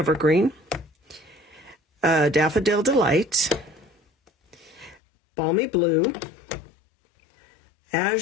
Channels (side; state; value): right; drops out; at 5.0 s